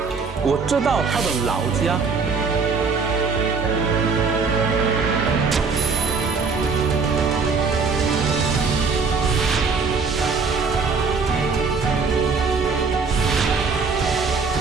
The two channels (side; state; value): left; quieter; 4.9 dB